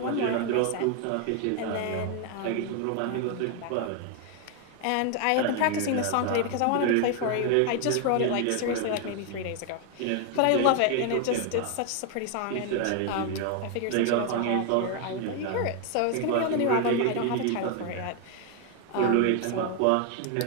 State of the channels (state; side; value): different; both; correlation 0.00